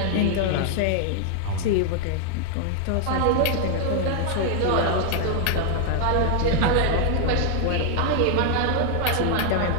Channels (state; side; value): different; both; correlation 0.00